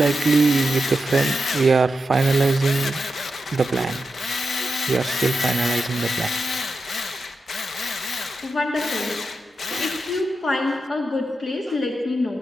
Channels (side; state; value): both; normal; correlation 0.89